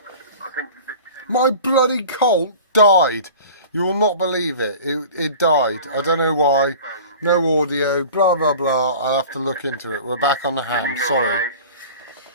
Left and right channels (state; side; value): inverted; both; correlation -0.40